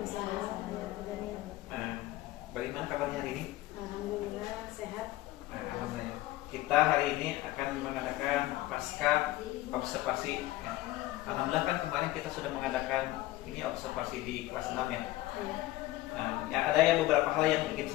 Bagaimana kabarnya hari ini? Alhamdulillah sehat. Alhamdulillah. Kita hari ini akan mengadakan pasca observasi. Alhamdulillah kan kemarin kita sudah mengadakan ini observasi di kelas 6 ya. Ada beberapa hal yang ingin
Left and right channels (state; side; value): quieter; right; 17.0 dB